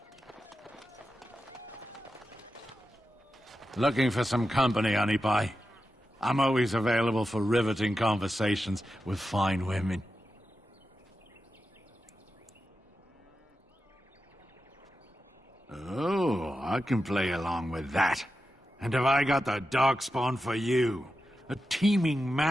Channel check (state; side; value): normal; both; correlation 0.90